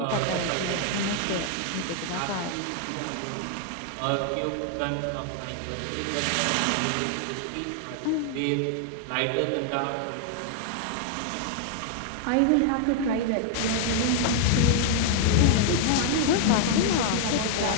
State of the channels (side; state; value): both; different; correlation 0.00